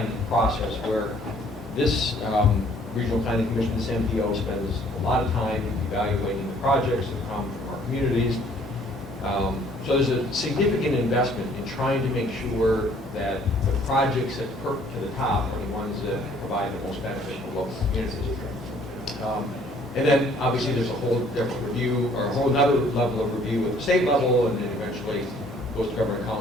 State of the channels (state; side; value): normal; both; correlation 0.59